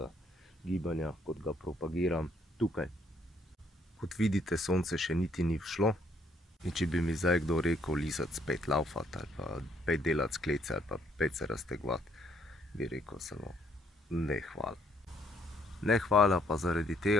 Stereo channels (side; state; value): both; normal; correlation 0.68